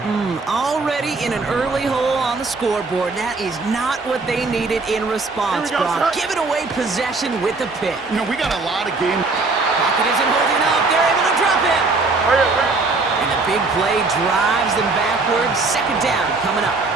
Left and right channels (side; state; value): left; quieter; 3.7 dB